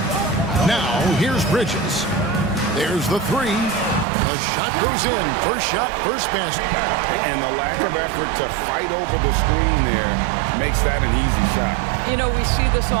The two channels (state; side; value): drops out; left; at 4.0 s